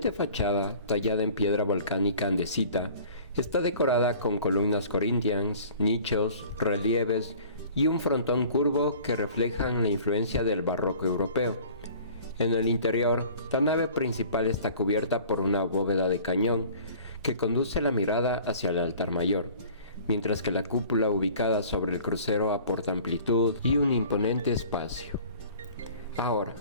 fachada, tallada en piedra volcánica andesita, está decorada con columnas corintias, nichos, relieves y un frontón curvo que reflejan la influencia del barroco europeo. En el interior, la nave principal está cubierta por una bóveda de cañón que conduce la mirada hacia el altar mayor, mientras que la cúpula ubicada sobre el crucero aporta amplitud y un imponente espacio. Ahora,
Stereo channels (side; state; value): both; inverted; correlation -0.47